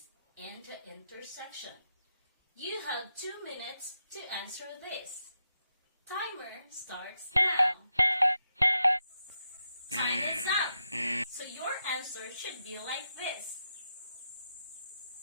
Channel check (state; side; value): inverted; both; correlation -0.86